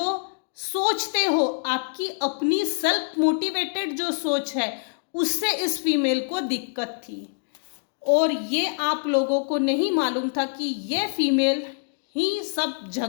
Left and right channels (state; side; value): silent; right; digital silence